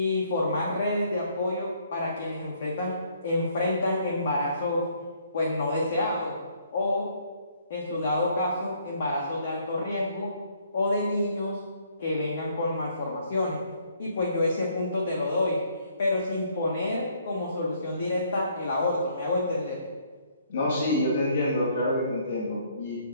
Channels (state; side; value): inverted; both; correlation -0.66